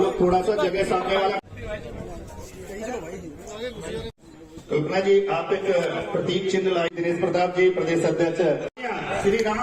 थोड़ा सा जगह सामने वाला। कल्पना जी आप एक प्रतीक चिन्ह लाई। दिनेश प्रताप जी प्रदेश अध्यक्ष। श्री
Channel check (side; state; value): both; identical; correlation 1.00